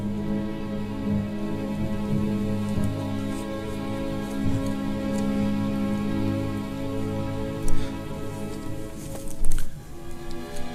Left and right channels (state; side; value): identical; both; correlation 1.00